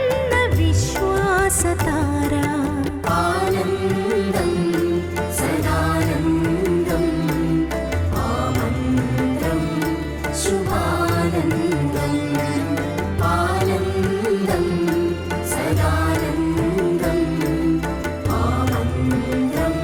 സതാര ആനന്ദം സദാനന്ദം ആമന്ത്രം ശുഭാനന്ദം ആനന്ദം സദാനന്ദം ആമന്ത്രം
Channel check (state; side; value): identical; both; correlation 1.00